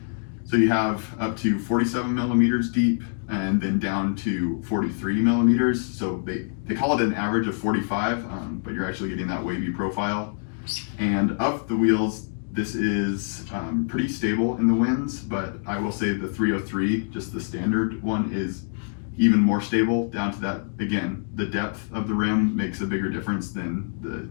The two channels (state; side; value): silent; right; digital silence